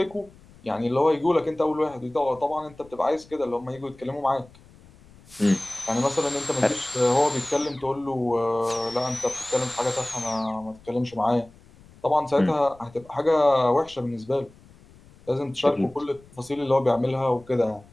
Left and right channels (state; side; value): noise; left; rumble, 25 dB below the sound